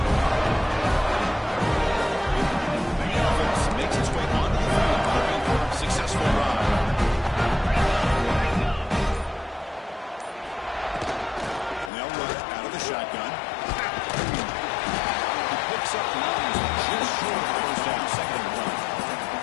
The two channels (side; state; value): right; drops out; at 11.9 s